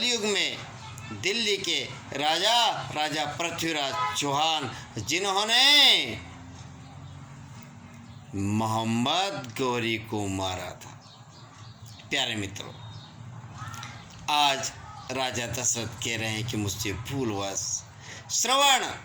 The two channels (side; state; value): both; identical; correlation 1.00